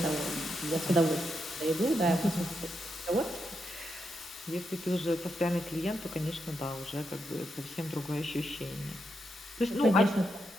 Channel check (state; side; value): normal; both; correlation 0.83